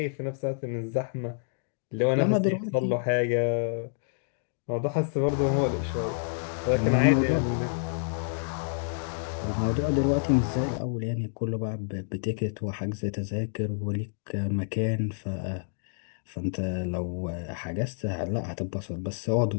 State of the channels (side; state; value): right; silent; digital silence